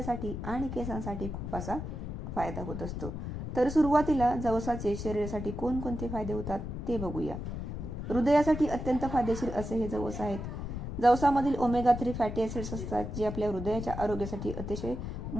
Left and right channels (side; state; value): left; noise; rumble, 6 dB below the sound